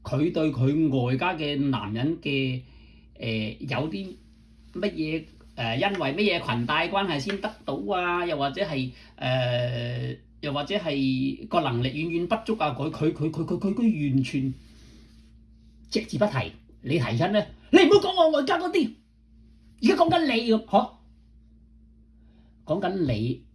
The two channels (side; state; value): both; identical; correlation 1.00